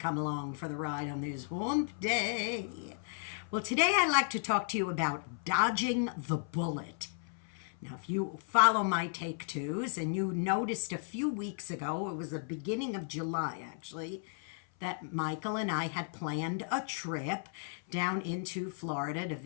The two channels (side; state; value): right; silent; 55 dB below the other